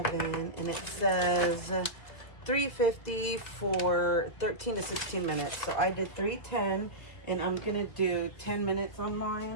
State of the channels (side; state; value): right; late; 2.0 ms